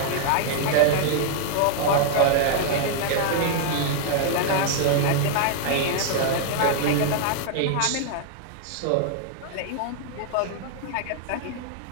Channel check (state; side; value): different; both; correlation 0.00